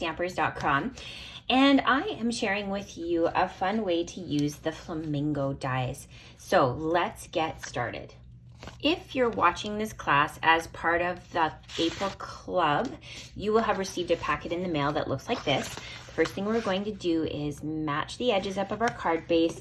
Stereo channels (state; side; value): identical; both; correlation 1.00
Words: and I am sharing with you a fun way to use the Flamingo dies. So let's get started. If you're watching this class as part of the April Club, you will have received a packet in the mail that looks like this. The first thing we're going to do is match the edges up of our card base,